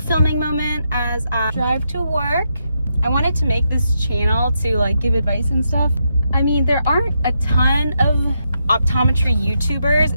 moment as I drive to work. I wanted to make this channel to like give advice and stuff. I mean, there aren't a ton of optometry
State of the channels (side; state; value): both; inverted; correlation -0.82